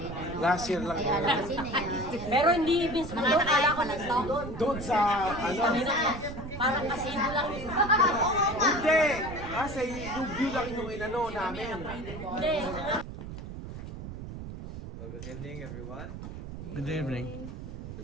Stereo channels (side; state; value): right; noise; rumble, 10 dB below the sound